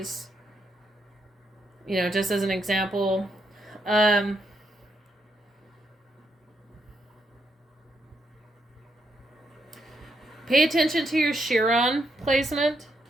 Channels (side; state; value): both; normal; correlation 0.79